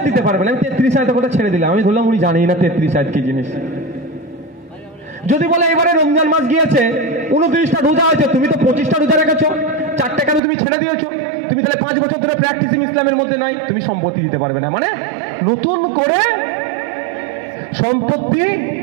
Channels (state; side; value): drops out; left; at 10.4 s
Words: দিতে পারবে না। আমি 33 আয়াতের কথা ছেড়ে দিলাম, আমি ধরলাম উনি জানেই না 33 আয়াত কি জিনিস। যদি বলে এবারে রমজান মাস গিয়েছে, 29টা রোজা আছে, তুমি তো 25টা রোজা রেখেছো, 4টা কেন তুমি ছেড়ে দিয়েছো? তুমি তাহলে 5 বছর ধরে প্র্যাকটিসিং ইসলামের মধ্যে নাই, তুমি সম্পত্তি দিতে পারবে না। মানে নতুন করে সম্পত্তি